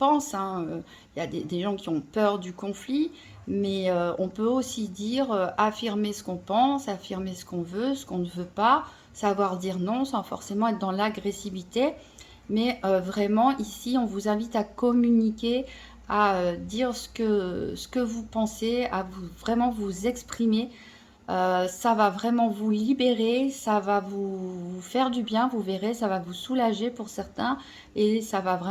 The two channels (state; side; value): identical; both; correlation 1.00